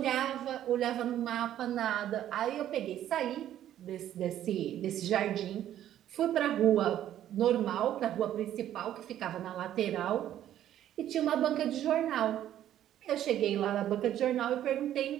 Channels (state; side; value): quieter; left; 11.7 dB